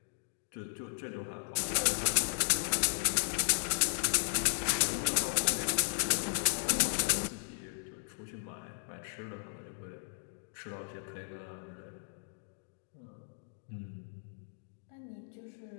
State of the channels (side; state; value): right; silent; digital silence